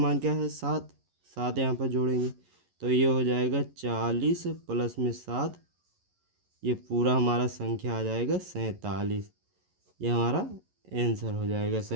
क्या है? 7 यहाँ पर जोड़ेंगे तो ये हो जाएगा 40 प्लस में 7, ये पूरा हमारा संख्या आ जाएगा 47, ये हमारा आंसर हो जाएगा।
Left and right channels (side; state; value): left; late; 11 ms